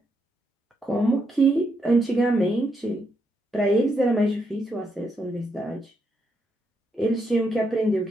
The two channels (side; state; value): both; normal; correlation 0.79